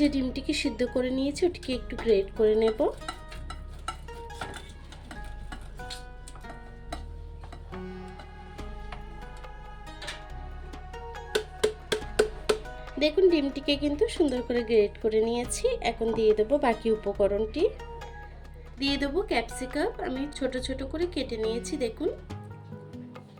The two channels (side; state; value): both; identical; correlation 1.00